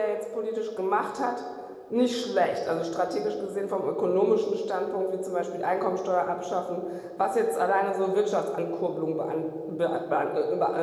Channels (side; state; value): both; identical; correlation 1.00